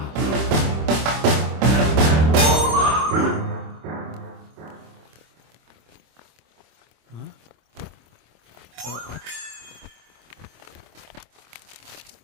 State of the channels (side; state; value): left; late; 26 ms